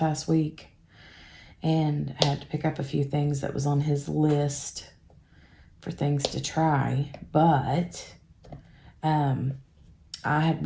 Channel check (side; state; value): both; identical; correlation 1.00